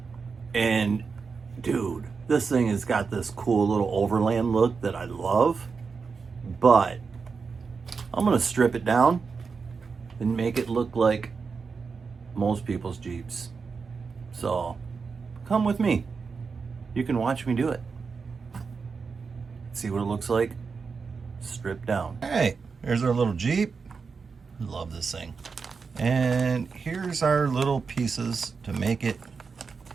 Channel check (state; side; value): quieter; left; 5.1 dB